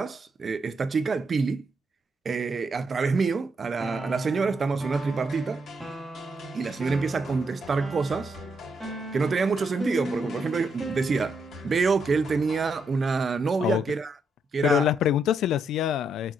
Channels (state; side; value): normal; both; correlation 0.78